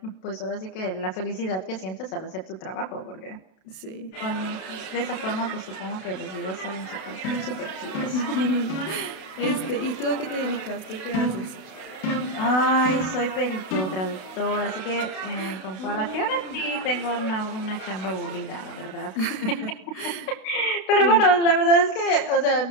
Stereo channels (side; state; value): right; late; 32 ms